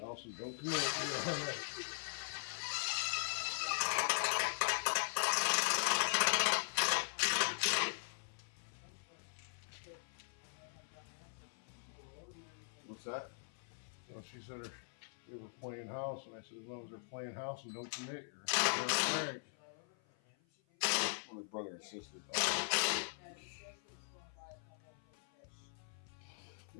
and don't commit, you're all right. What's that? Well, she said they were playing house, and I said, as long as they're playing house and don't commit, you're all right. Well, the brother and sister.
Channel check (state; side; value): silent; right; 51 dB below the other